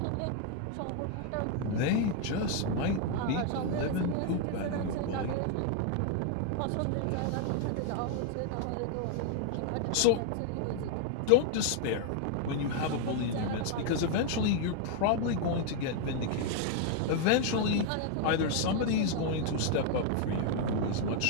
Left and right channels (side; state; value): both; different; correlation 0.00